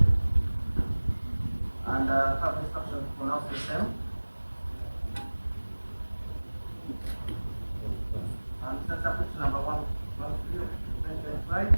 and have instructions to pronounce the same. And that's application number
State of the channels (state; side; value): inverted; both; correlation -1.00